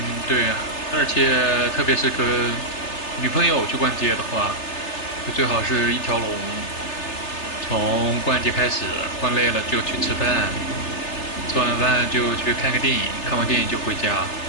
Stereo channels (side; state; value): right; late; 3.3 ms